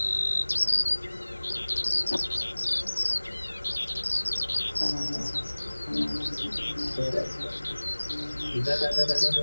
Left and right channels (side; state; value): both; inverted; correlation -1.00